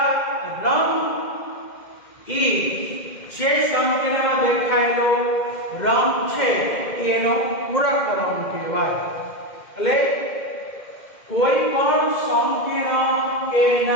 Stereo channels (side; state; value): right; late; 2.1 ms